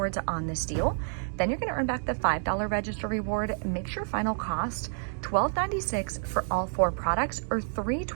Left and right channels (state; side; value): silent; left; digital silence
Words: on this deal. Then you're gonna earn back the $5 register reward. Makes your final cost $12.96 for all 4 products, or